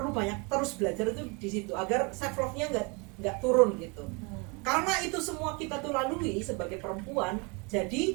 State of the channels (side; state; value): left; quieter; 30.9 dB